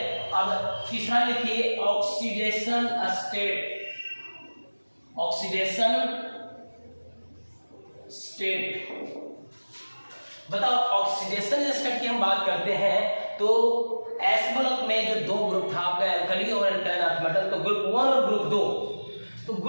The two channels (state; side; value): inverted; both; correlation -1.00